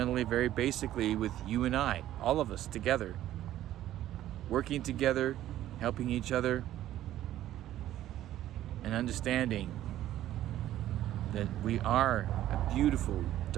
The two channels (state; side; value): quieter; left; 13.1 dB